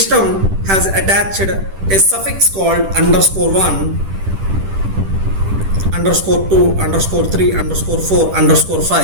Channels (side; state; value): left; late; 10 ms